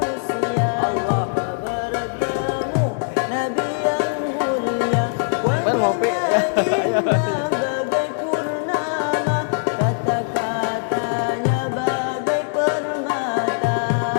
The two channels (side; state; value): right; silent; digital silence